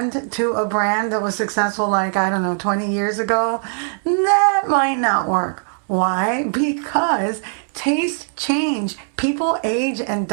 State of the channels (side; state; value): left; silent; 66 dB below the other